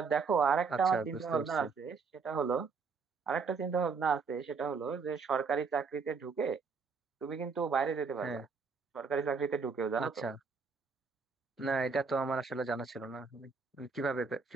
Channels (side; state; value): left; quieter; 5.0 dB